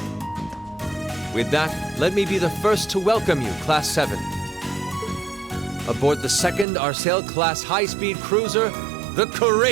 With that, let me be the first to welcome you, Class 7. Aboard the second Arsail-class high-speed cruiser, the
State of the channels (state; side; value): drops out; left; at 6.7 s